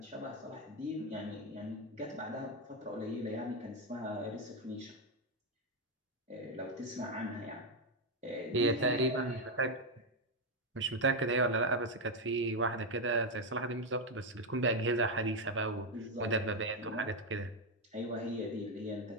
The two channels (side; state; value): both; normal; correlation 0.05